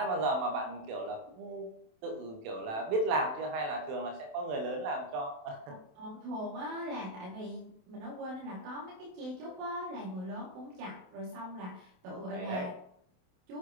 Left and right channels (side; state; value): left; late; 27 ms